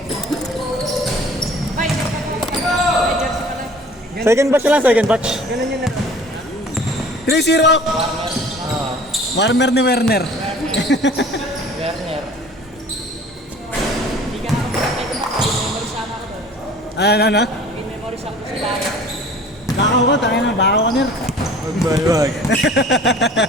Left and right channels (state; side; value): normal; both; correlation 0.47